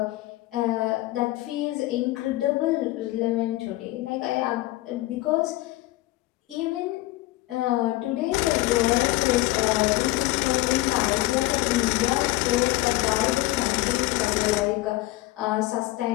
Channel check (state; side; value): quieter; right; 18.5 dB